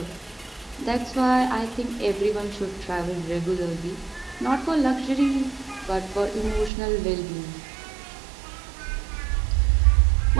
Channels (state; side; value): drops out; left; at 6.7 s